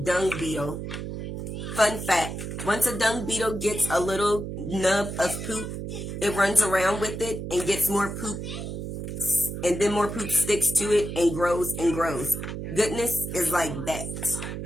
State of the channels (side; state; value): right; noise; hum, 6 dB below the sound